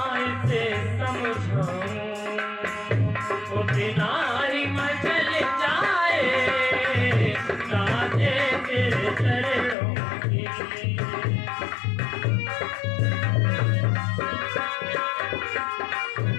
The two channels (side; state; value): right; drops out; at 9.8 s